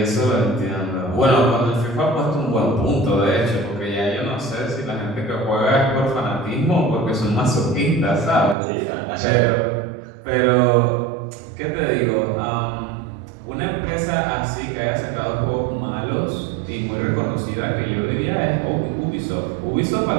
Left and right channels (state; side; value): drops out; left; at 8.6 s